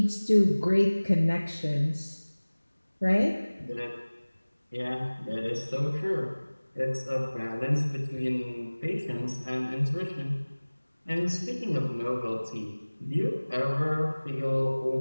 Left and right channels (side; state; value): both; inverted; correlation -1.00